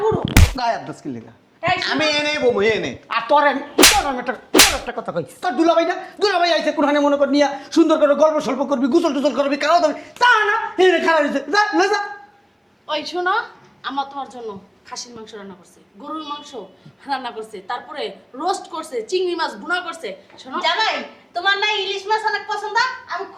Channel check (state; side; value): identical; both; correlation 1.00